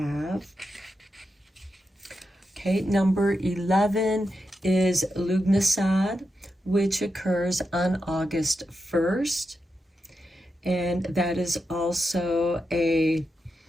okay, number 11 is Lugnasad, which occurs on August 1st. And that is also a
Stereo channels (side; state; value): both; normal; correlation 0.87